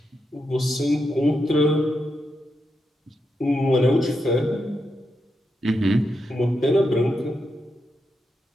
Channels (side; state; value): both; normal; correlation 0.85